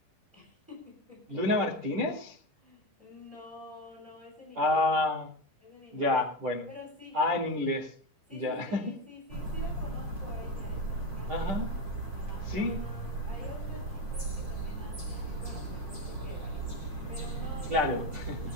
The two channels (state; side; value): late; left; 10 ms